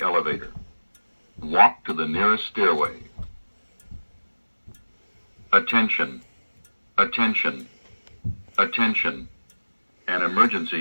Walk to the nearest stairway. Attention. Attention. Attention. An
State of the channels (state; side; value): inverted; both; correlation -1.00